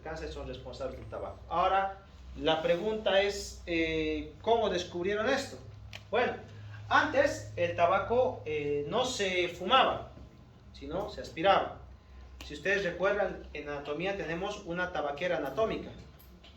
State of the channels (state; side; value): identical; both; correlation 1.00